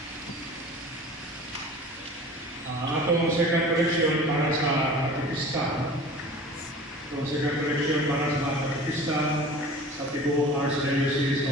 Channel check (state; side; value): normal; both; correlation 0.41